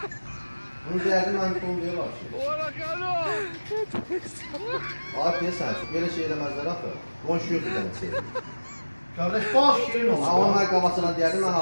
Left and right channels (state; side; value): inverted; both; correlation -1.00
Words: Bunu deyərdim mən konu deyirlər. Abi deyəsən, belə şey eləməzlər axı. Qonşu yoxdur dənə şey. Kardeş bal şirin olur. Amma mən qabasına deyərdim mən